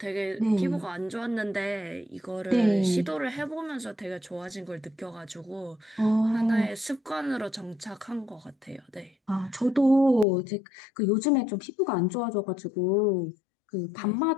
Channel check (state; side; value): drops out; right; at 10.2 s